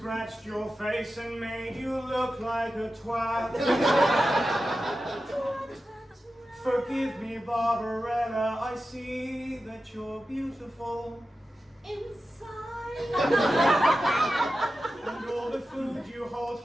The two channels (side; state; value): both; normal; correlation 0.92